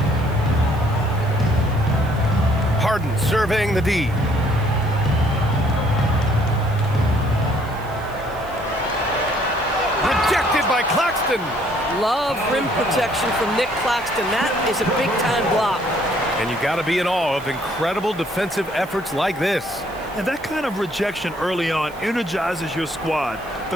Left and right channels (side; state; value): right; noise; hiss, 24 dB below the sound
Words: Harden surveying the D. Claxton. Love rim protection from Nick Claxton. That is a big-time block. And you got to be in awe of incredible defensive efforts like this. And that kind of rejection early on energizes your squad.